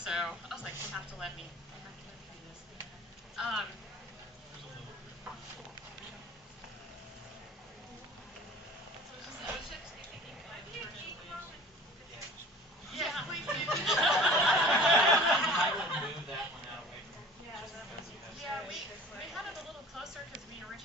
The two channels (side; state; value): both; normal; correlation 0.43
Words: I was like, they have to let me do this. Yeah, please do. I would move that one out away from Yeah, we had it a little closer because we